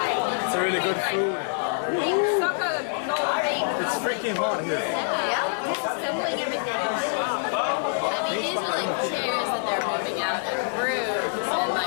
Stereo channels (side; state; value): right; silent; 61 dB below the other